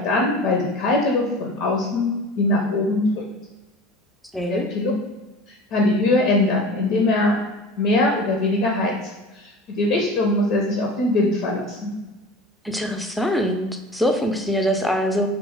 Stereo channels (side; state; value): both; normal; correlation 0.38